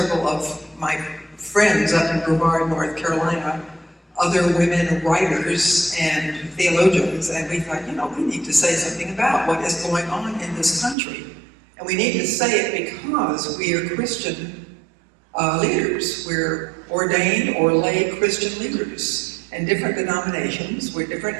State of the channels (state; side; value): drops out; left; at 11.0 s